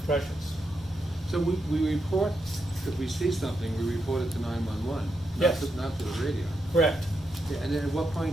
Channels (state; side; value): normal; both; correlation 0.83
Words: precious. So we report, if we see something, we report it to 911, Yes. not to the radio. Correct. Yeah, and then at what